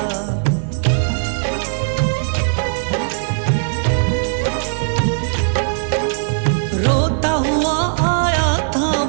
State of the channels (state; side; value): silent; left; digital silence